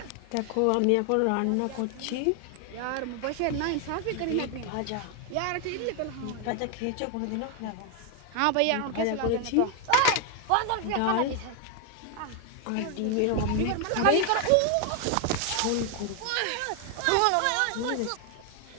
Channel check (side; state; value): both; different; correlation 0.01